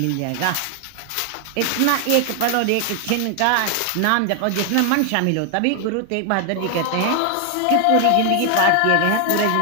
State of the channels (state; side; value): different; both; correlation 0.00